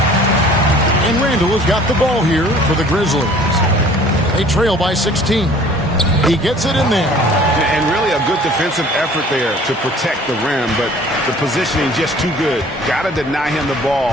Randall has got the ball here for the Grizzlies. They trail by 16. He gets it in there. And really a good defensive effort there to protect the rim, but the positioning just too good. Got to deny him the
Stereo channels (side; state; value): both; normal; correlation 0.51